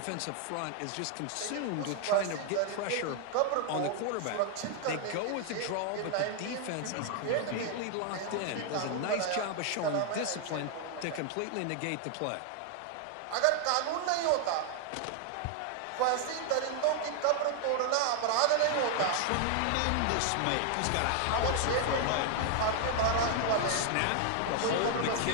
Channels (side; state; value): both; different; correlation 0.00